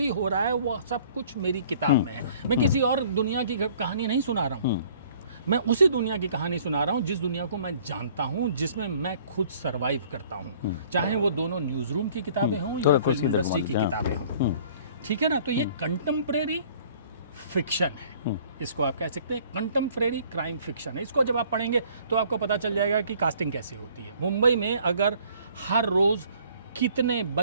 हो रहा है वो सब कुछ मेरी किताब में है। मैं किसी और दुनिया की कहानी नहीं सुना रहा हूँ, मैं उसी दुनिया की कहानी सुना रहा हूँ जिस दुनिया को मैं जानता हूँ, जिसमें मैं खुद सरवाइव करता हूँ, चाहे वो दोनों न्यूज़ रूम की किताबें हों या फिल्म इंडस्ट्री की किताबें हों। ठीक है ना? तो ये कंटेम्प्रेरी फिक्शन है, इसको आप कह सकते हैं कंटेम्प्रेरी क्राइम फिक्शन है। इसको जब आप पढ़ेंगे तो आपको पता चल जाएगा कि कास्टिंग कैसे होती है। मुंबई में अगर हर रोज़ कितने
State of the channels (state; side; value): inverted; both; correlation -0.56